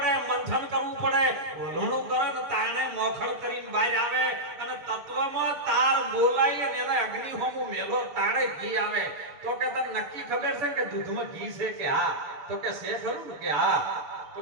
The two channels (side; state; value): left; late; 6.6 ms